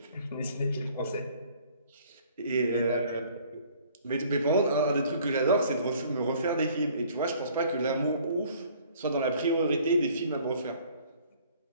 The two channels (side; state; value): both; inverted; correlation -0.56